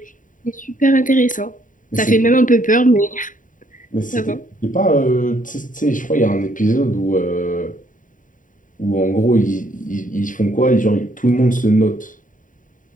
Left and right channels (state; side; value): late; right; 0.38 ms